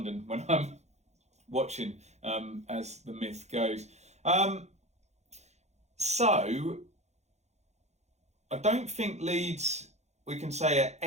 when I'm watching, as the myth goes. So I don't think Leeds, we can say, are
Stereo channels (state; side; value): late; left; 0.32 ms